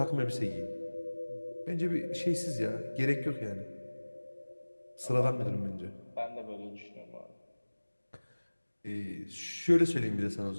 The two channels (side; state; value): both; inverted; correlation -1.00